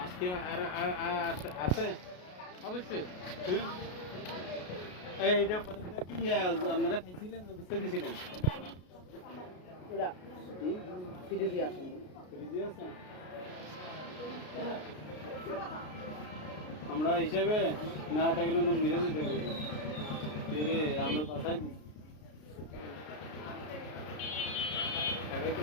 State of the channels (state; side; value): late; right; 33 ms